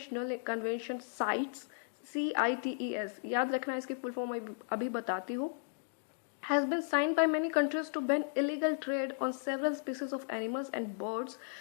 convention CITES, CITES, याद रखना इसकी full form अभी बताती हूँ, has been signed by many countries to ban illegal trade on several species of animals and birds।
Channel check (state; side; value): silent; right; digital silence